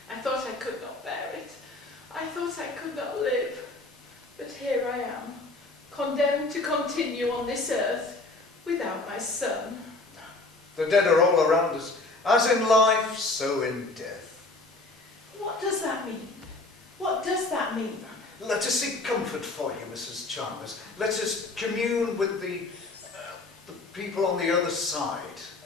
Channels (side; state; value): right; quieter; 3.2 dB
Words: I thought I could not bear it. I thought I could not live. But here I am, condemned to continue on this earth without my son. The dead are all around us. As in life, so in death. What does that mean? What does that mean? Let us seek comfort for you, Mrs. Chalmers. Let us commune with the people on the other side.